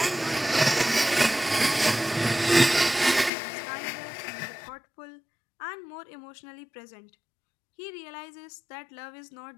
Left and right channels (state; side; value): drops out; right; at 3.3 s